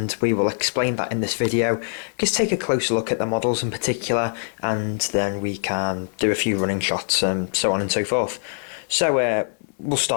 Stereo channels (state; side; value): silent; right; digital silence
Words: we will explain that in this video. Just take a closer look at the models in particular, and then we can do a few running shots and so on and so forth. So we'll